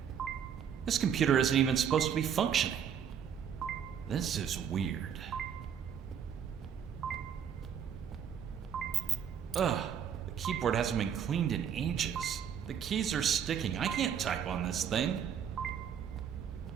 This computer isn't even supposed to be functioning. This is weird. Ugh, the keyboard hasn't been cleaned in ages. The keys are sticking. I can't type on this thing.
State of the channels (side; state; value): left; quieter; 8.3 dB